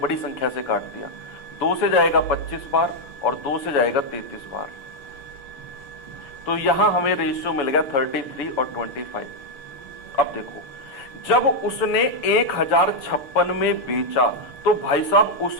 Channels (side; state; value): right; late; 7.0 ms